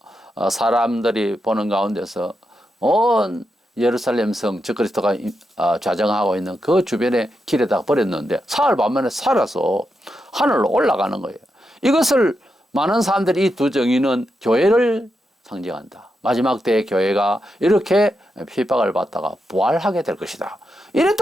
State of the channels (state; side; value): normal; both; correlation 0.86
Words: 사람들이 보는 가운데서 온 예루살렘 성 저 그리스도가 좌정하고 있는 그 주변의 길에다가 버렸는데 사흘 만에 살아서 하늘로 올라가는 거예요. 이것을 많은 사람들이 이 두 정의는 교회를 상징한다. 마지막 때의 교회가 이렇게 핍박을 받다가 부활하게 될 것이다. 이래